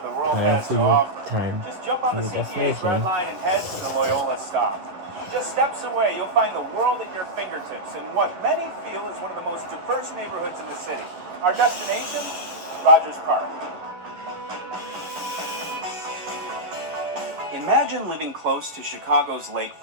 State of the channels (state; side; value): late; left; 11 ms